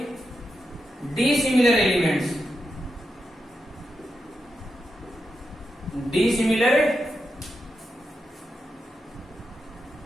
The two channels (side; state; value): both; normal; correlation 0.87